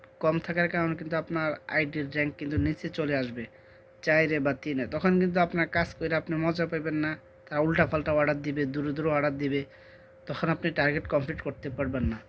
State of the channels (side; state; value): both; identical; correlation 1.00